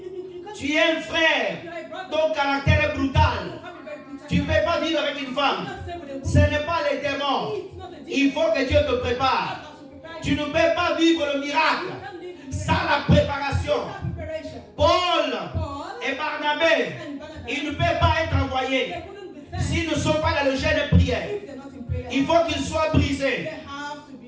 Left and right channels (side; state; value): both; identical; correlation 1.00